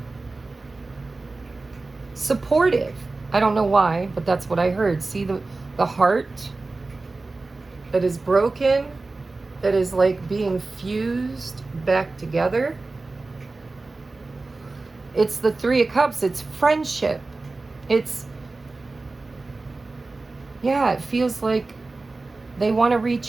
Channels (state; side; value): quieter; left; 3.4 dB